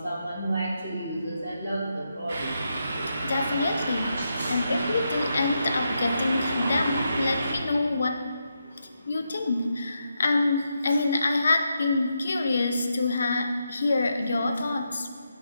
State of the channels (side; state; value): both; inverted; correlation -0.83